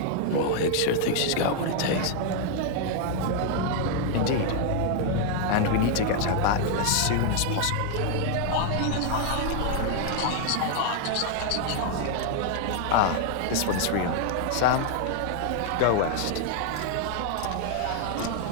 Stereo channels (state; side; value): different; both; correlation 0.00